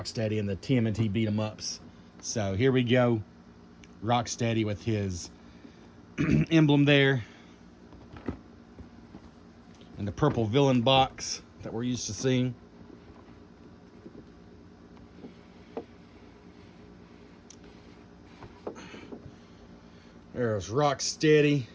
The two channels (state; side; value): identical; both; correlation 1.00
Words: in the TMNT beat 'em ups. So here we go. Rocksteady with his emblem there. And the purple villain box that we're used to seeing. There's Rocksteady,